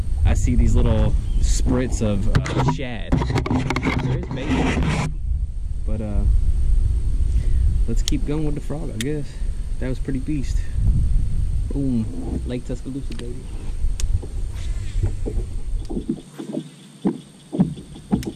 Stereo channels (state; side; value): identical; both; correlation 1.00